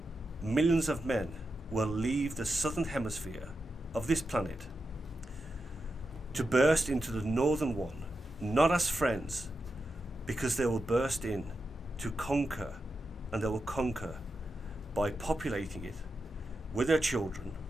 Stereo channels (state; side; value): normal; both; correlation 0.88